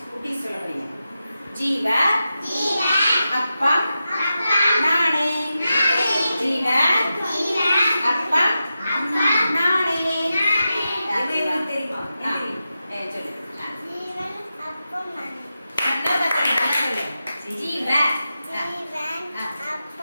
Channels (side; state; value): both; inverted; correlation -0.90